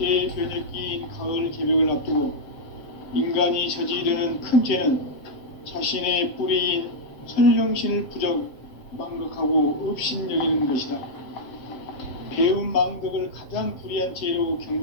가을 개벽을 앞두고 인간이 저지르는 큰 죄는 자신의 뿌리인 선령신을 부정, 망극하고 업신여기는 것이다. 배움 망덕을 가장 불의한 죄로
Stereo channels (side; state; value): right; late; 7.6 ms